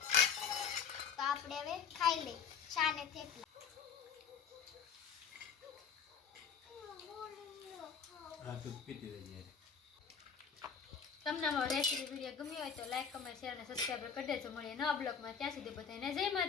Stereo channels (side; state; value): right; quieter; 6.7 dB